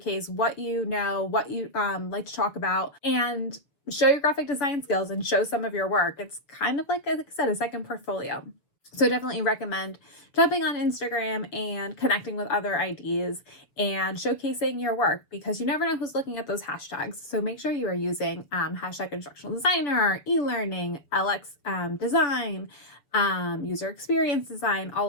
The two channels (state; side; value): late; right; 6.9 ms